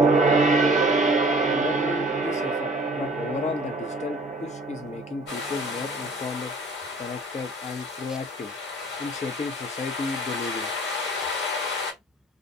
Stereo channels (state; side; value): normal; both; correlation 0.50